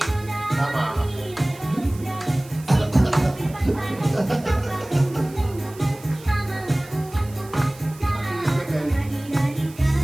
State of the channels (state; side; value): noise; right; hiss, 21 dB below the sound